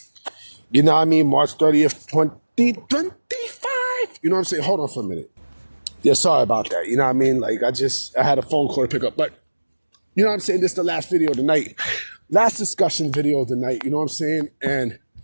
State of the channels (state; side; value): inverted; both; correlation -1.00